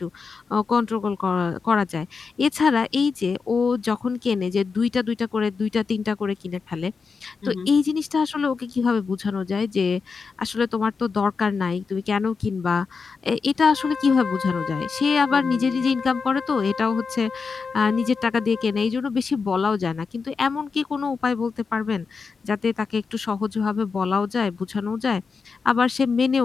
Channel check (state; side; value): quieter; right; 5.1 dB